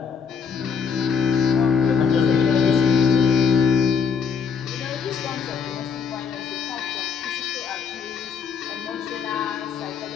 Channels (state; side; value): quieter; right; 6.3 dB